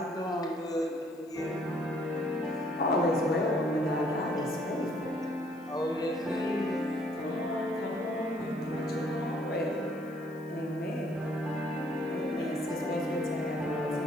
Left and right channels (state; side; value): noise; left; hiss, 29 dB below the sound